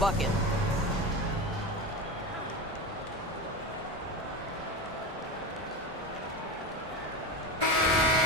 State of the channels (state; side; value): normal; both; correlation 0.24